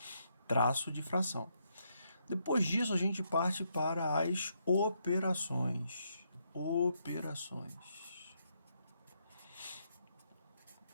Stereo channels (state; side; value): inverted; both; correlation -0.77